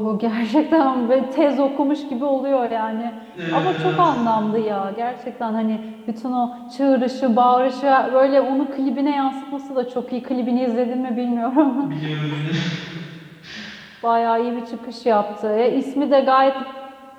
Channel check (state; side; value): identical; both; correlation 1.00